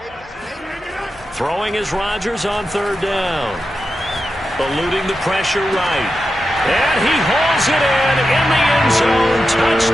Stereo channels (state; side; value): normal; both; correlation 0.90